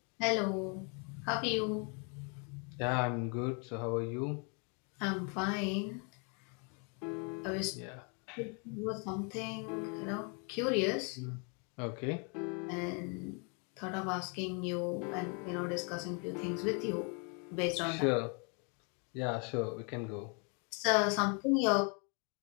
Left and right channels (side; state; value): right; quieter; 36.5 dB